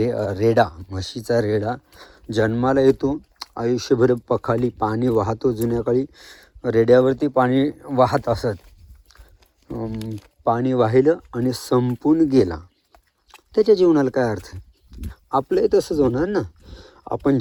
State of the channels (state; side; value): identical; both; correlation 1.00